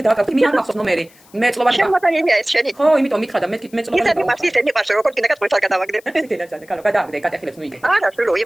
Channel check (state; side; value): noise; left; hiss, 28 dB below the sound